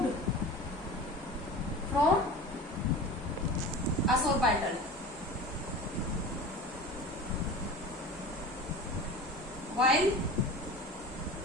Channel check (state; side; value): normal; both; correlation 0.35